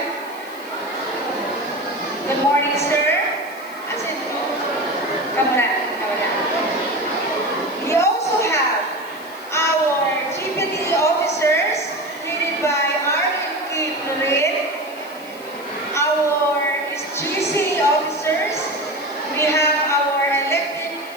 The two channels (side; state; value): left; noise; hiss, 21 dB below the sound